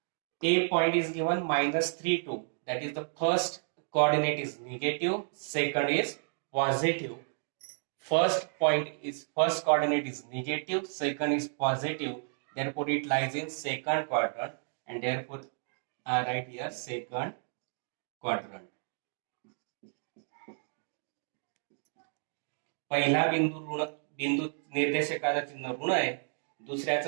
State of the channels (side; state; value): left; silent; digital silence